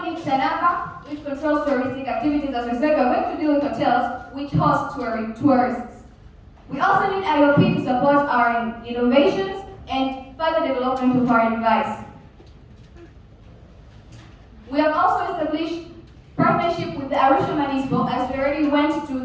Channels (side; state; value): both; identical; correlation 1.00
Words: Sananga, which controls touristic activities. As we said, we're going to deal with hotels which host tourists. We also need IOP to support our innovations and further development of our device. We have also established partnership with the Arusha Municipal, as we already went to